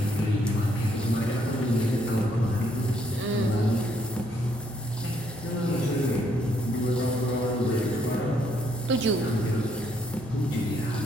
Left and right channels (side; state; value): both; normal; correlation 0.71